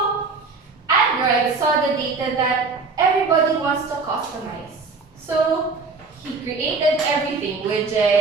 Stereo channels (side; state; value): left; quieter; 4.2 dB